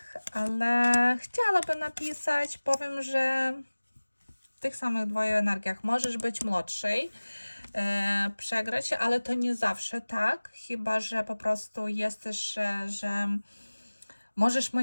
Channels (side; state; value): both; inverted; correlation -1.00